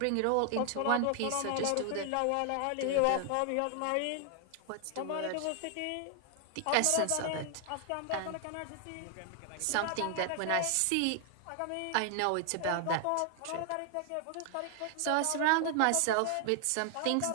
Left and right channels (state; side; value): different; both; correlation 0.00